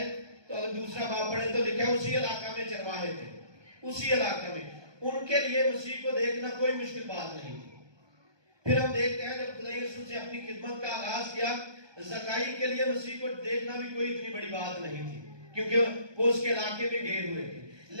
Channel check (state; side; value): late; left; 1.2 ms